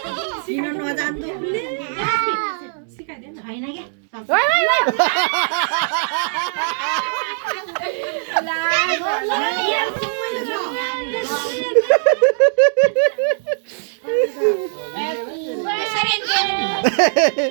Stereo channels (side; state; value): left; silent; digital silence